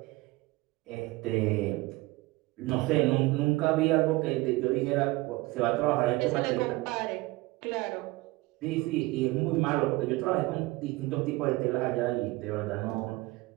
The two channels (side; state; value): left; quieter; 21.0 dB